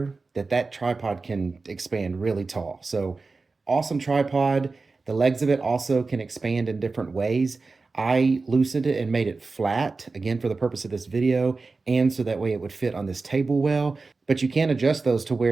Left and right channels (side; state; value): left; quieter; 3.9 dB